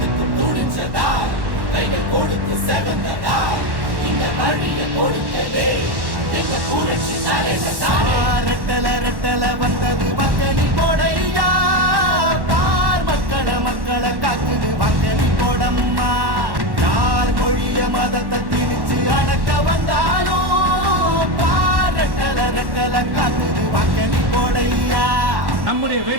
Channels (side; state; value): left; late; 1.1 ms